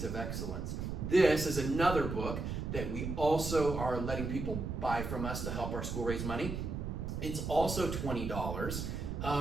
of Excellence. This is another book that we also are letting people buy from us to help our school raise money. It's also $20.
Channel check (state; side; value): noise; right; rumble, 4 dB below the sound